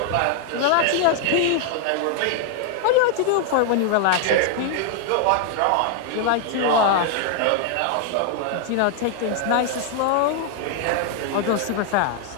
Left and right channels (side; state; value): both; different; correlation 0.00